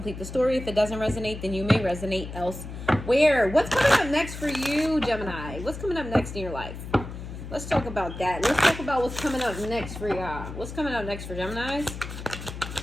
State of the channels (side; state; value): left; noise; hum, 10 dB below the sound